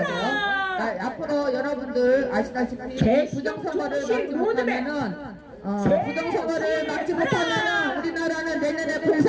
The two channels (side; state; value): both; identical; correlation 1.00